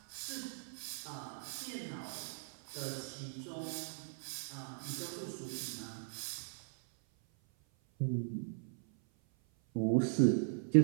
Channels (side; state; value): left; silent; 52 dB below the other